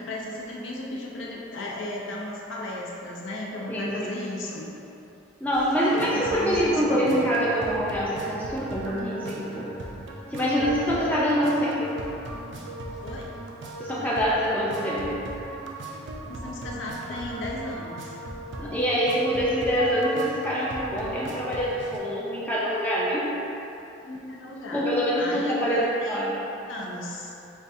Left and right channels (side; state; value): both; normal; correlation 0.40